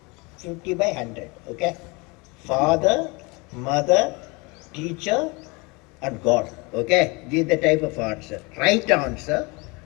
50 by 100. Okay. Father, mother, teacher, and God. Okay. This is the type of answer. Right answer.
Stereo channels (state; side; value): quieter; right; 27.5 dB